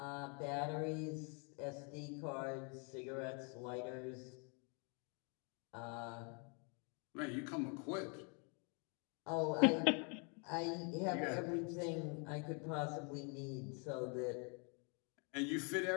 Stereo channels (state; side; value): quieter; right; 36.4 dB